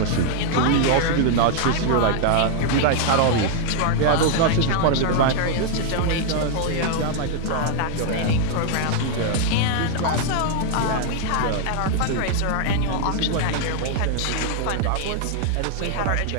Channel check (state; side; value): different; both; correlation 0.00